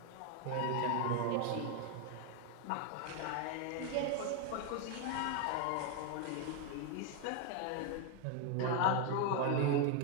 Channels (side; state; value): both; different; correlation 0.01